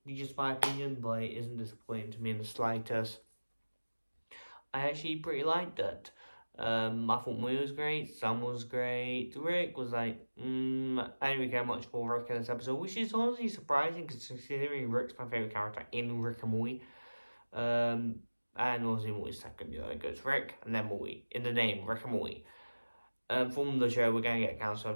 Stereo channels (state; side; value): inverted; both; correlation -1.00